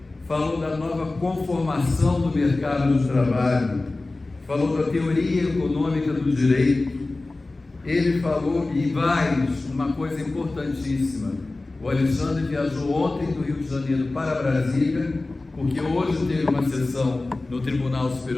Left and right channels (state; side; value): quieter; right; 3.1 dB